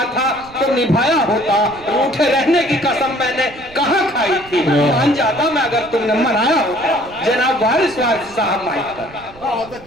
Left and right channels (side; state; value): right; noise; rumble, 21 dB below the sound